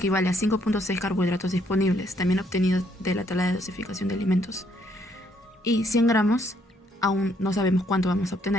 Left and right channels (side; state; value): both; normal; correlation 0.70